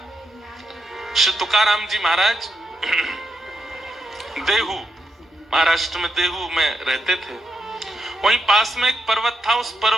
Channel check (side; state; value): both; normal; correlation 0.83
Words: श्री तुकाराम जी महाराज देहू, महाराष्ट्र में देहू में रहते थे। वहीं पास में एक पर्वत था, उस